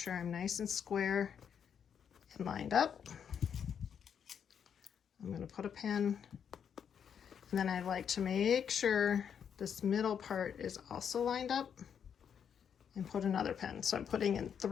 I'm nice and square and lined up. I'm going to put a pin, and then I like to make sure this middle part is also lined up, and put another pin. So I'm putting in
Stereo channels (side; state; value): right; quieter; 7.8 dB